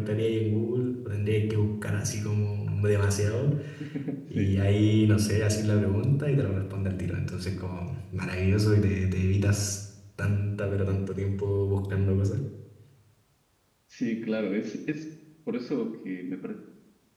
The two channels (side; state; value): both; identical; correlation 1.00